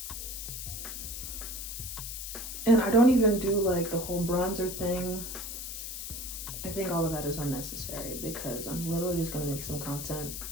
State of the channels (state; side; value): noise; left; hiss, 6 dB below the sound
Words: And I don't even do like the whole bronzer thing. I think all of that is unnecessary because I'm literally just gonna make some content